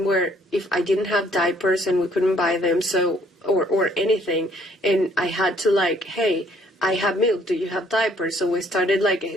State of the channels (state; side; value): normal; both; correlation 0.63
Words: where if I didn't have diapers and we couldn't buy them, or anything, and I had to hey, I have milk, do you have diapers? So we started